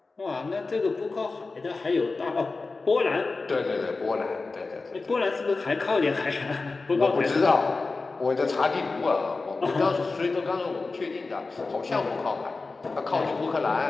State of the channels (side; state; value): right; quieter; 3.8 dB